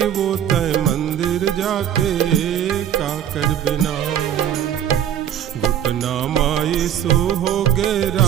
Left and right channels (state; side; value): quieter; left; 10.0 dB